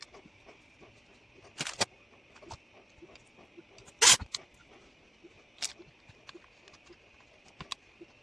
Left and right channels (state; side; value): normal; both; correlation 0.93